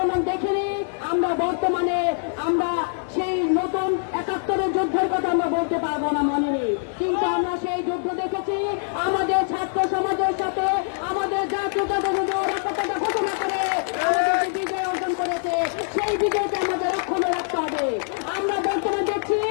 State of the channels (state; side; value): silent; right; digital silence